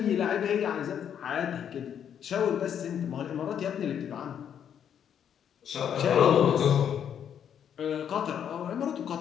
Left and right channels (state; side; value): quieter; right; 8.8 dB